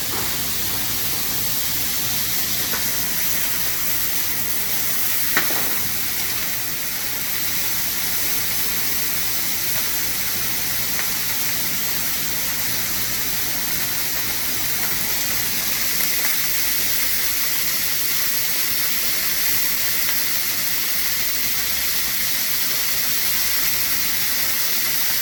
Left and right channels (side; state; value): both; identical; correlation 1.00